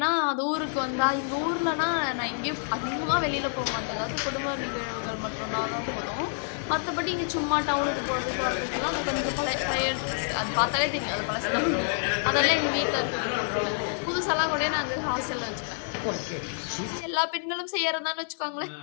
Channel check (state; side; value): silent; right; digital silence